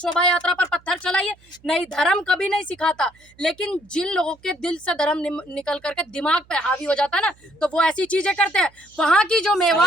यात्रा पर पत्थर चलाइए? नहीं, धर्म कभी नहीं सिखाता। लेकिन जिन लोगों के दिल से धर्म निकल करके दिमाग पे हावी हो जाता है ना, तो वो ऐसी चीजें करते हैं। वहाँ की जो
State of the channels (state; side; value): noise; right; hum, 30 dB below the sound